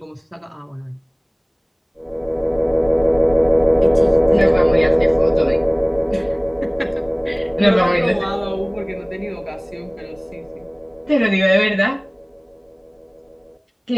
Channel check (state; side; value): identical; both; correlation 1.00